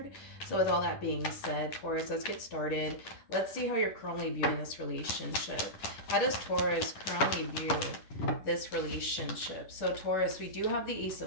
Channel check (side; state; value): right; late; 10 ms